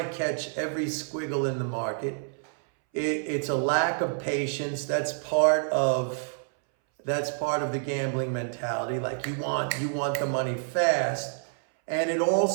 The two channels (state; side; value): silent; left; 59 dB below the other